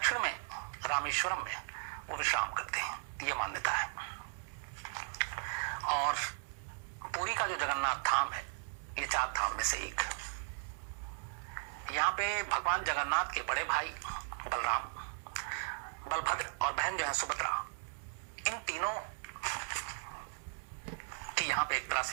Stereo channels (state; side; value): silent; left; digital silence